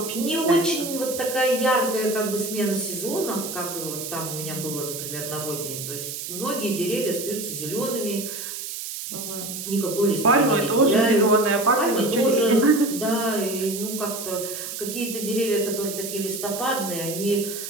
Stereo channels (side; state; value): right; noise; hiss, 7 dB below the sound